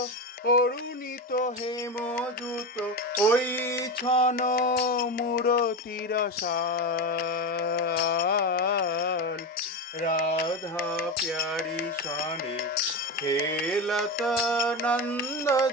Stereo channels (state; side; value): normal; both; correlation 0.18